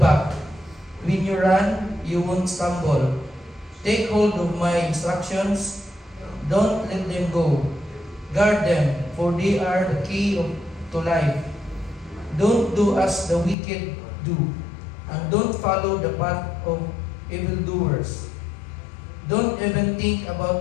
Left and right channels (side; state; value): right; drops out; at 13.6 s